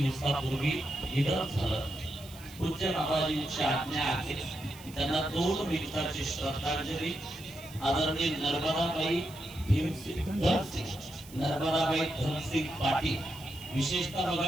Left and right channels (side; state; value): right; noise; hiss, 19 dB below the sound